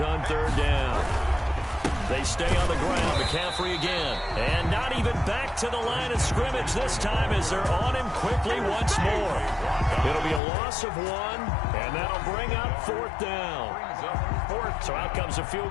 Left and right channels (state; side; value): drops out; right; at 10.4 s